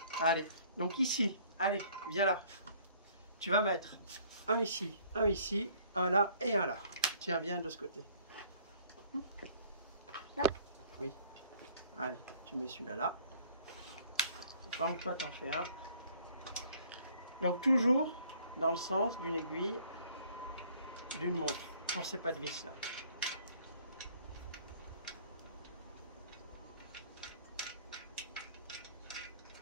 Allez. Donc ici. Allez, viens là. Tu vas mettre un ici, un là et un là. Tiens, viens de ce côté. Là. Oui. Allez, tu mets celui-là là. Donc toi, t'en fais un. Donc toujours dans le sens d'une aiguille d'une montre pour ces pas de vis là.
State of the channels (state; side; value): inverted; both; correlation -0.56